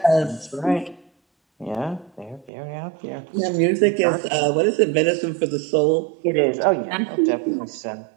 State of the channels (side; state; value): left; drops out; at 2.5 s